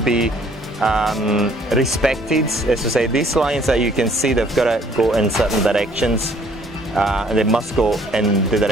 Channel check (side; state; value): both; normal; correlation 0.60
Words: respected. As to say, these lines that you can see, they've got to go in certain directions. And they must go in the